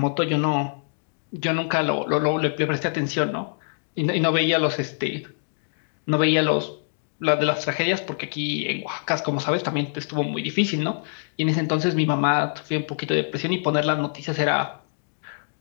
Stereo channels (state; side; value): silent; right; digital silence